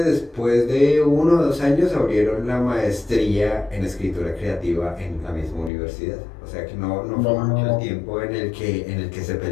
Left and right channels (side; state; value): right; drops out; at 5.7 s